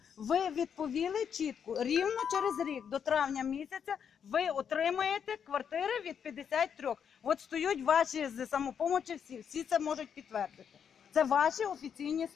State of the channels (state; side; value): quieter; right; 7.6 dB